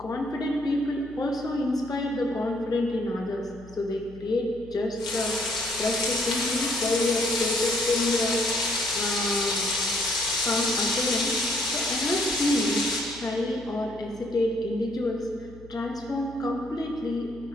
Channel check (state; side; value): noise; left; hum, 20 dB below the sound